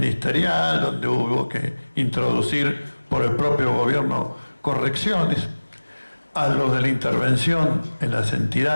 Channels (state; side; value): inverted; both; correlation -1.00